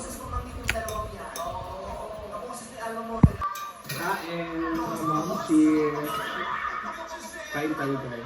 Cheers. Kain tayo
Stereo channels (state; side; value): identical; both; correlation 1.00